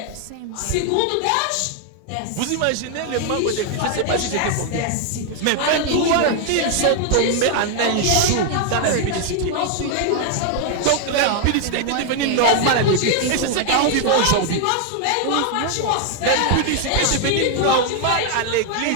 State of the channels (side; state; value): both; different; correlation 0.00